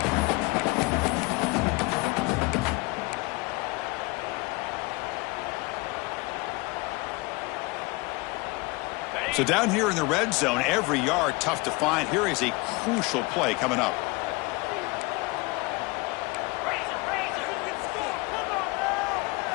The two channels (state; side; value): quieter; right; 24.9 dB